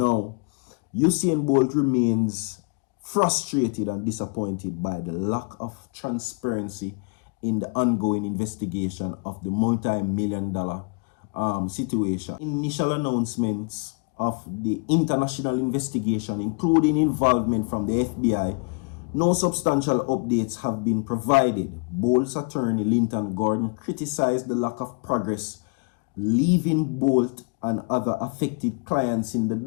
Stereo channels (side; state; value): right; quieter; 35.5 dB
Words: Usain Bolt remains frustrated and disappointed by the lack of transparency in the ongoing investigation of the multi-million-dollar situation. Initial announcements of the international investigation, including involvement from the FBI, no substantial updates have been provided. Bolt's attorney, Linton Gordon, criticized the lack of progress, leaving Bolt and other affected clients in the